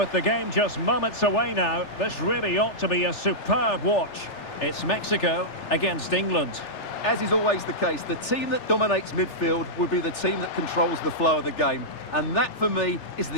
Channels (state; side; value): late; right; 3.4 ms